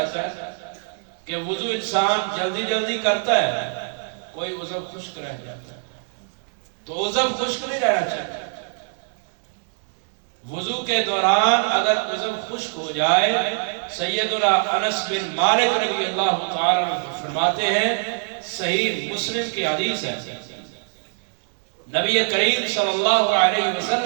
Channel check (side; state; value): left; silent; 63 dB below the other